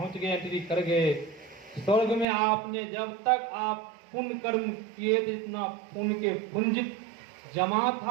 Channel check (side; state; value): left; drops out; at 2.2 s